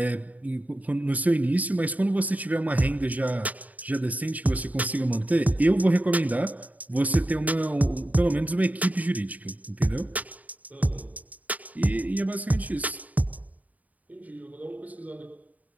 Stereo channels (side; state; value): left; late; 0.074 ms